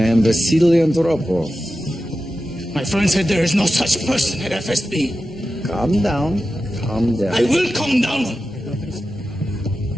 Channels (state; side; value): normal; both; correlation 0.92